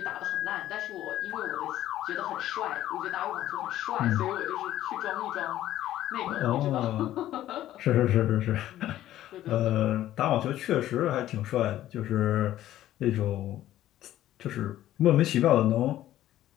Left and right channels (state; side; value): quieter; right; 13.4 dB